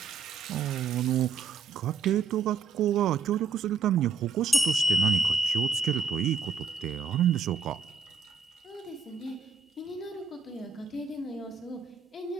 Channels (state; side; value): quieter; left; 5.3 dB